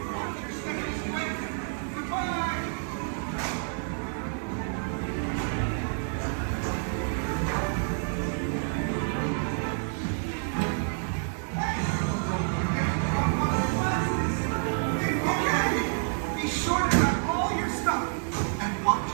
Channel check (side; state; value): left; silent; 59 dB below the other